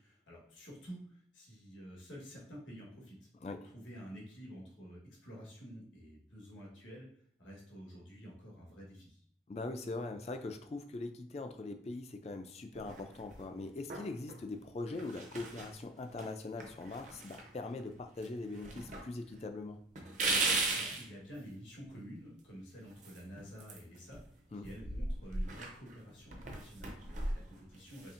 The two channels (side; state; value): both; normal; correlation 0.47